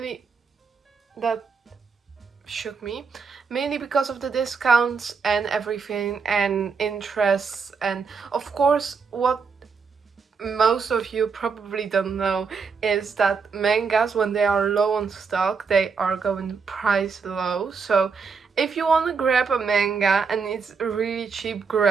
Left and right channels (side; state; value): left; quieter; 5.4 dB